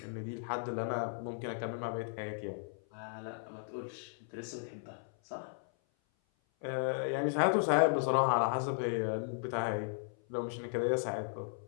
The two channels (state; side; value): silent; right; 54 dB below the other